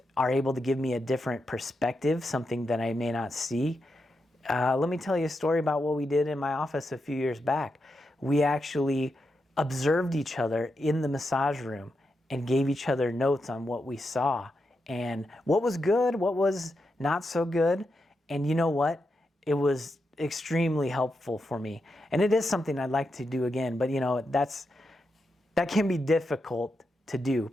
are able to give me a different perspective, something that I may not see. Let me tell you a story about what we did in my office a few years back. We actually observed each other in the massage room and gave each other notes on what we saw and what was good, what was not so good. And you know what? It was extremely helpful for me. And it is something I'd like to do again, but you know, that can be difficult to do,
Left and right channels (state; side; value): normal; both; correlation 0.86